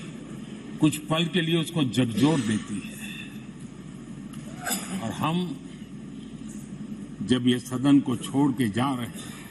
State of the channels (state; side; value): identical; both; correlation 1.00